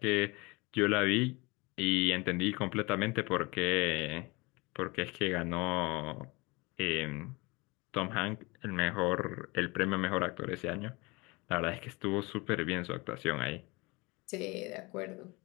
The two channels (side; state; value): right; quieter; 25.5 dB